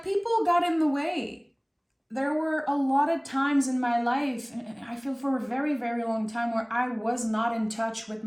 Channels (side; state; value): both; identical; correlation 1.00